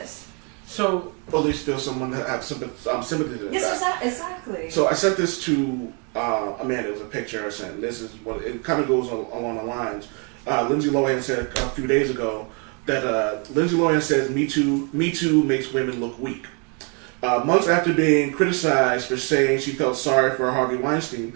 So, Or at least feel someone that have sympathy to Yes, that. exactly. So I sent this to Amanda. It was a picture I sent. This is what it kind of goes along the lines. Lindsay Lohan said a few days ago that Lindsay Lohan says Me Too makes women look weak. Months after being criticized for saying she felt sorry for Harvey Weinstein,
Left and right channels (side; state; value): left; quieter; 35.7 dB